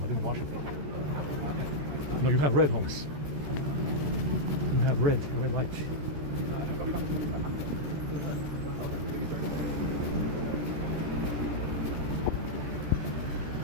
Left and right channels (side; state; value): left; late; 14 ms